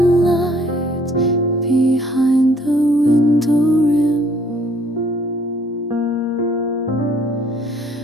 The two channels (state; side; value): normal; both; correlation 0.60